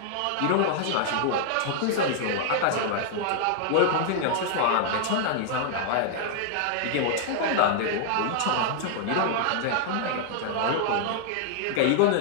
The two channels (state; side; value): different; both; correlation -0.01